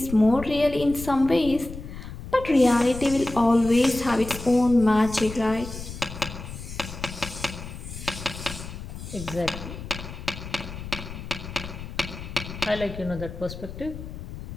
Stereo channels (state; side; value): noise; left; rumble, 11 dB below the sound